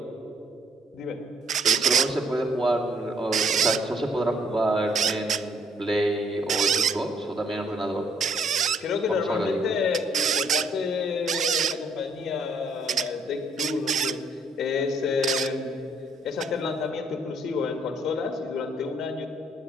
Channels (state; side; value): normal; both; correlation 0.66